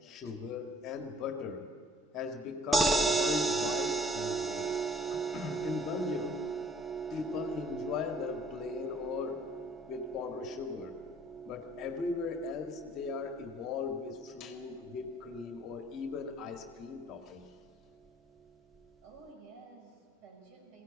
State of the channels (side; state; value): both; normal; correlation 0.59